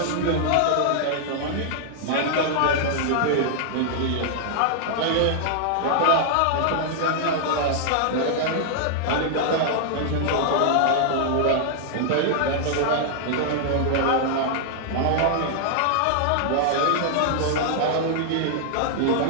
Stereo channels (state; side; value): different; both; correlation -0.01